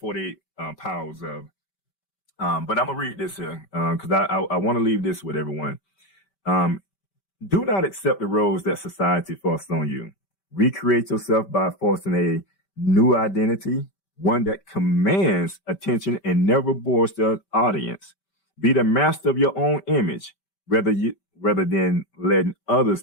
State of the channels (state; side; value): late; right; 5.2 ms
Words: Powers of. But I'm going to read this here because I want to leave this with everyone. Do not accept the roles that society forced on you. Recreate yourself by forcing a new identity, one that commands attention and never bores the audience. Be the master of your own image, rather than letting others